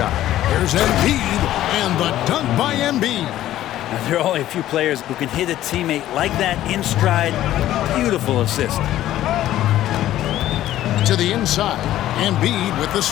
Here's Embiid, and the dunk by Embiid. Now, there are only a few players who can hit a teammate like that in stride. Beautiful assist. To the inside, Embiid with the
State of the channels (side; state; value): right; quieter; 13.5 dB